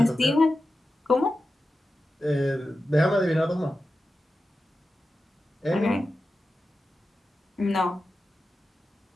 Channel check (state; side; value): normal; both; correlation 0.92